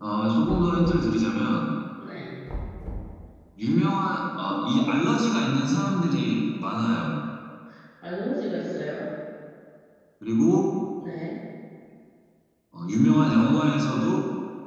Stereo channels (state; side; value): identical; both; correlation 1.00